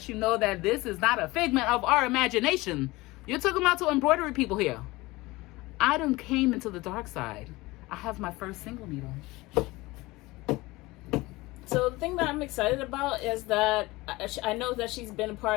you know that this is not a figment of our imagination. You're talking about to embroidery people here. I done came into the dark side. I have my first single needle. So the thing that I'm excited about is that I know that she's been a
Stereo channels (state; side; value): quieter; right; 21.0 dB